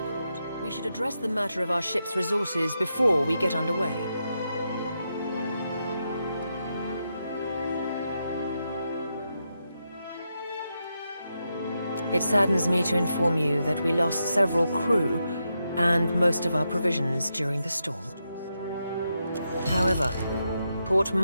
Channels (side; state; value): both; inverted; correlation -0.85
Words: lord, we should address the matter of our ship's resources before we get underway. It saddens me to inform you that we lost several crew and most of our provisions during the storm. However, Port